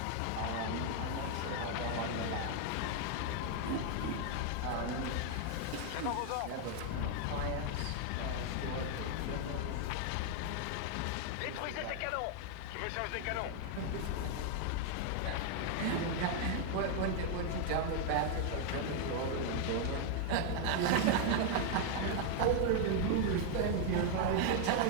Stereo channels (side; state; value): both; different; correlation 0.00